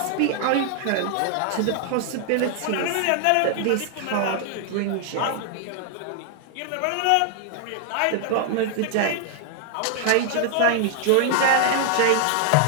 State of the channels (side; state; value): both; different; correlation 0.00